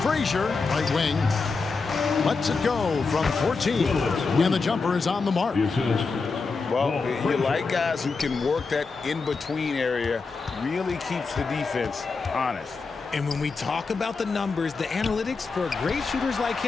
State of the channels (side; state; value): right; quieter; 4.4 dB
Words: Frazier, right wing. Lets it go from 14, and the jumper is on the mark. Well, you like guys who can work that in-between area, really keeps the defense honest. And when we talk about the numbers, the analytics for great shooters like